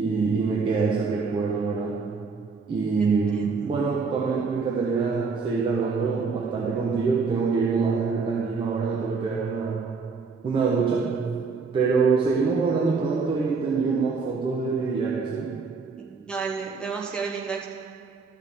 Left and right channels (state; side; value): quieter; left; 4.8 dB